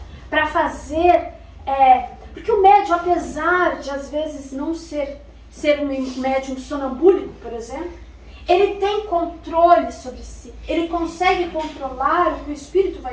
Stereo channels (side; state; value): both; identical; correlation 1.00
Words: para fazer, porque o médium, apesar de às vezes não ser um médium sonambúlico, por exemplo, ele tem controle sobre si, ele consegue controlar o que o espírito